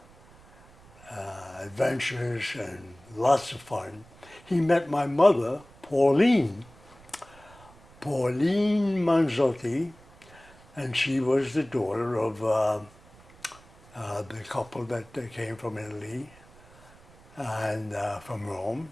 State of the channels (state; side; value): noise; right; rumble, 25 dB below the sound